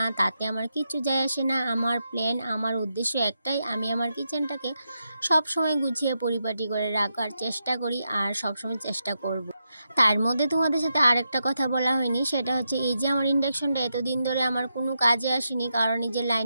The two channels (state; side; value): inverted; both; correlation -0.85